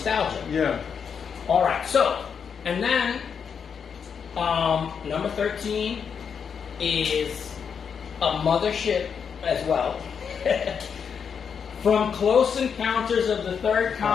Yeah. All right. So, and then number 13 is a mothership as well. From Close Encounters of the Third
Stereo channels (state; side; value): quieter; right; 6.8 dB